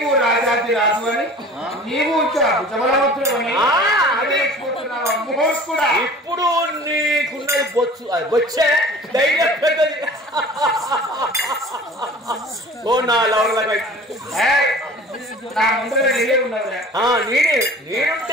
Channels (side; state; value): both; normal; correlation 0.44